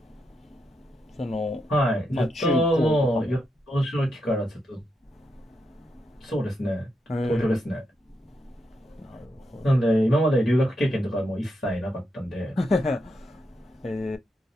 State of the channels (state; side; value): normal; both; correlation 0.83